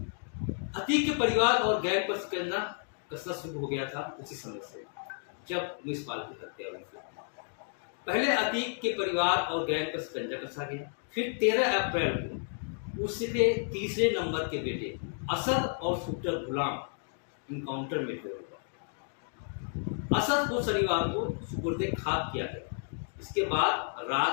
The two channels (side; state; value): right; silent; 56 dB below the other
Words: अतीक के परिवार और गैंग पर शिकंजा कसना शुरू हो गया था उसी समय से जब उमेश पाल की हत्या हुई थी। पहले अतीक के परिवार और गैंग पर शिकंजा कसा गया। फिर 13 अप्रैल को उसके तीसरे नंबर के बेटे असद और शूटर गुलाम इनकाउंटर में हुए। असद को शनिवार को सुपुर्दे खाक किया गया। इसके बाद